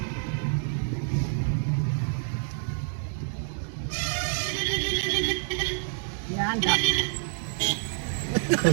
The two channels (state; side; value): silent; left; digital silence